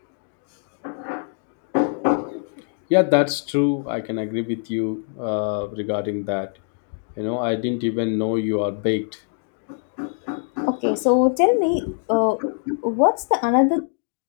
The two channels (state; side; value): silent; right; 60 dB below the other